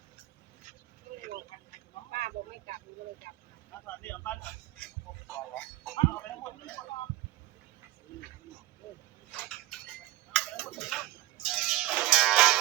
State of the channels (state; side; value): quieter; left; 16.5 dB